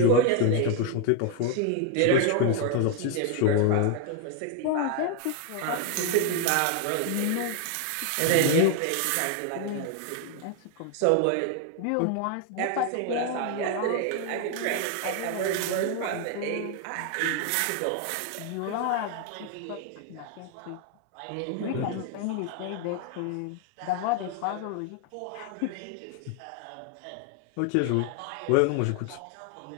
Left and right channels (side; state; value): both; different; correlation 0.01